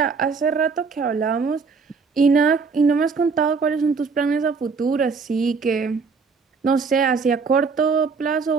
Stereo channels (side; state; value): left; quieter; 5.0 dB